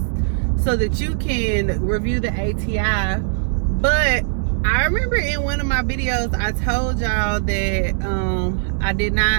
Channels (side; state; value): left; silent; digital silence